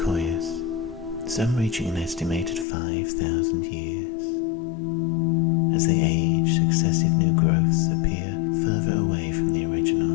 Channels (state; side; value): drops out; right; at 2.7 s